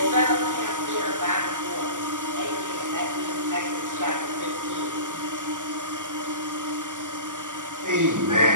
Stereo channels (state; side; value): late; left; 0.87 ms